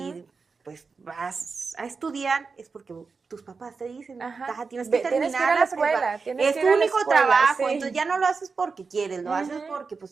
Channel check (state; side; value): quieter; left; 4.8 dB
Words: Ujú. pues vas a estudiar, es porque tus papás te dicen, Ajá. "Taja, tienes que Tienes que ir terminar a la la escuela, prepa. tienes Es que tu ir a la único escuela, trabajo, sí. entonces ya no lo haces porque quieres, lo haces Ujú. porque